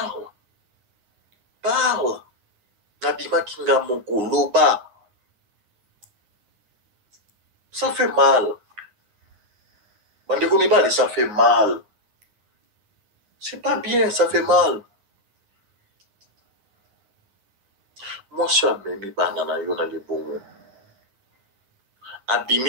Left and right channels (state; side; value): late; left; 9.7 ms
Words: parle nabimaki nga moko loba ça fait mal bandeko mibali ça fait mal c'est pas bien ça fait mal mwasi amemi bana na yo na libongo